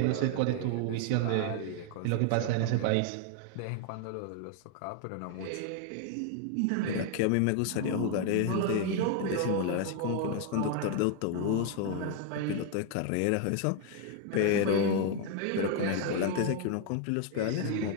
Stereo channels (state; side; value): different; both; correlation 0.00